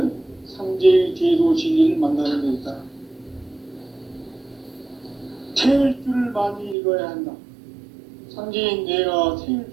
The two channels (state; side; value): drops out; left; at 6.8 s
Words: 상제의 제도 진리를 만나는 데 있다. 태일주를 많이 읽어야 한다. 상제인 내가